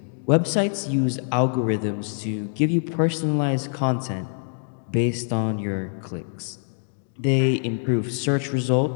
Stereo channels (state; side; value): silent; right; digital silence